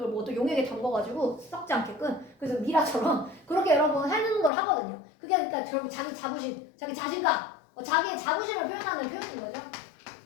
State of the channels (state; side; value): drops out; right; at 4.5 s